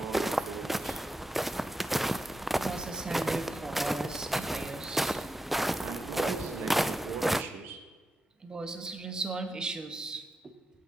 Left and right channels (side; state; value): both; normal; correlation 0.88